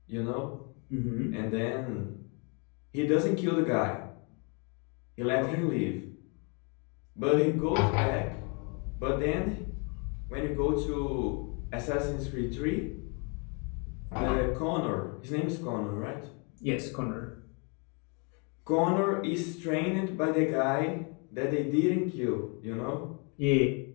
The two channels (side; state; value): right; quieter; 35.3 dB